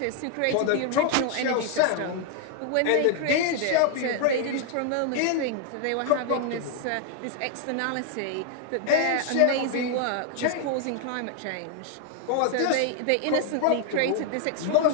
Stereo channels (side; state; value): both; different; correlation 0.00